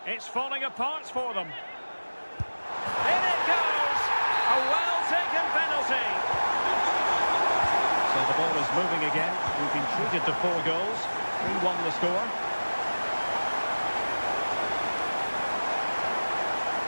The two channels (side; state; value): both; inverted; correlation -1.00